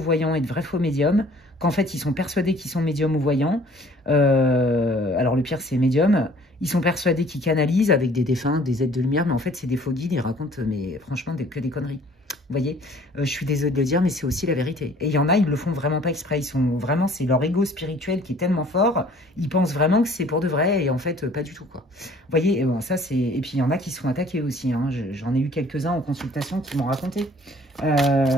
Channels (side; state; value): both; normal; correlation 0.54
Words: et de vrais faux médiums qu'en fait, ils sont persuadés qu'ils sont médiums ou voyants. Alors le pire, c'est médiums. Ils sont persuadés qu'ils canalisent avec des défunts, des êtres de lumière, mais en fait, c'est des faux guides. Ils racontent, mais franchement, que des conneries. Vous voyez, je suis désolée de le dire, mais c'est aussi la vérité. Et il y en a, ils le font vraiment pas exprès. Ils sont vraiment, c'est leur ego spirituel qui est tellement fort. Ils pensent vraiment que c'est pour de vrai, et en fait, pas du tout, quoi. Vous voyez, et bon, ça c'est. Et puis il y en a qui se font attaquer aussi. Hein. J'en ai eu quelques-uns en consultation qui m'ont raconté.